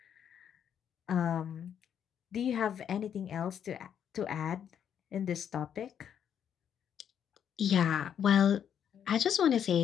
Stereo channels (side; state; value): right; quieter; 8.7 dB